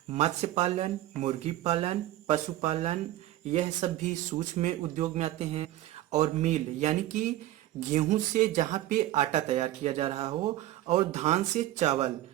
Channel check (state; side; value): quieter; left; 14.6 dB